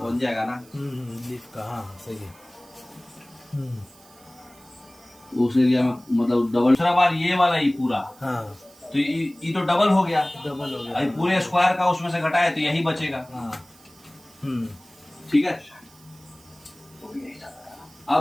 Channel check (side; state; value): right; noise; hiss, 25 dB below the sound